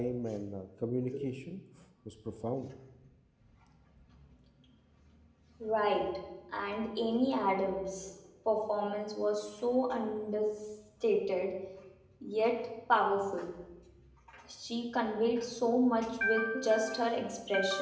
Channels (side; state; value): both; identical; correlation 1.00